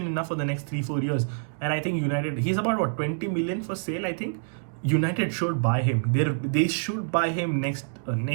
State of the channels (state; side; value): silent; left; digital silence